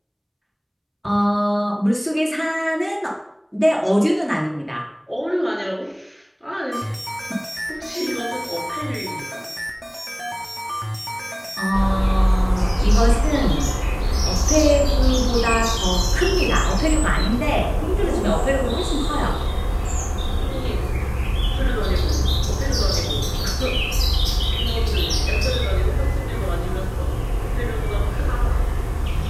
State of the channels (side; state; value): both; identical; correlation 1.00